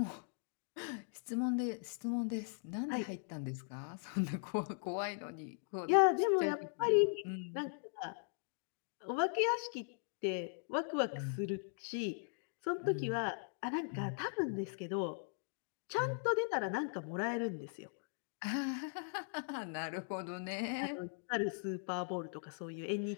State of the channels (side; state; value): right; silent; digital silence